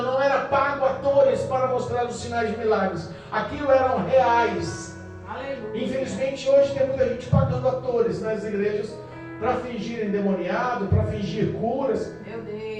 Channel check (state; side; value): identical; both; correlation 1.00